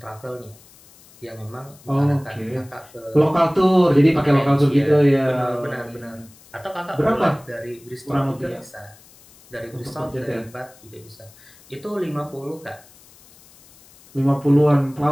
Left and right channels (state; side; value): noise; left; hiss, 25 dB below the sound